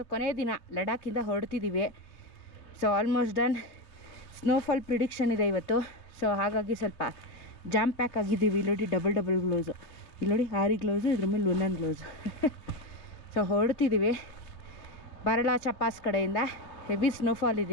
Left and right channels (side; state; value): right; late; 3.2 ms